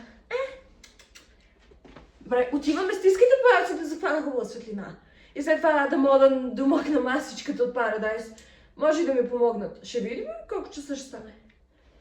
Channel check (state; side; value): identical; both; correlation 1.00